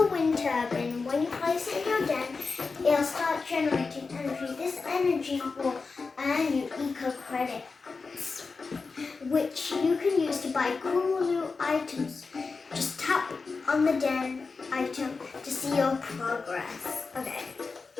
wind turbine. When you place it in your den, it'll start generating energy. This energy will earn you eco credits, which you can use to buy cool new items. Just tap on the den item to see your progress. Okay,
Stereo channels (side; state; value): right; quieter; 4.4 dB